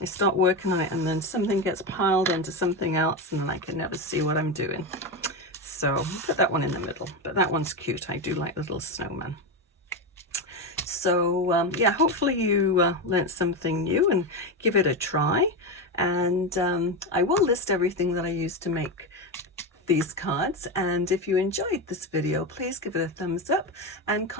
I start working on it and then something gets piled onto something else and then I can never see what I'm doing. So I'll put that one in the middle, but that one's cute. I do like little snowman. So yeah, hopefully you learnt something new and give it a try. And I will list everything that I used to make these cards. And if you enjoyed this video, please give it a thumbs up and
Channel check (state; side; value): normal; both; correlation 0.14